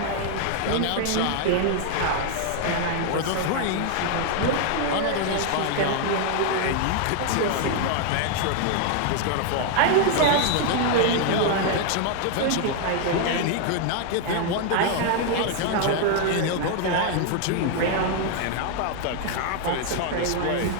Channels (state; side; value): different; both; correlation 0.00